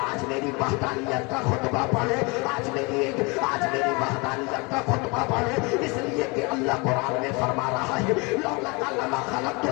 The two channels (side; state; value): right; quieter; 28.1 dB